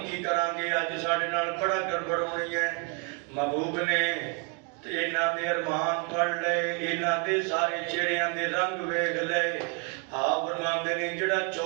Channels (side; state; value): left; quieter; 36.9 dB